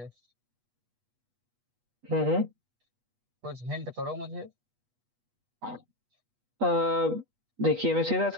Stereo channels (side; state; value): left; late; 8.3 ms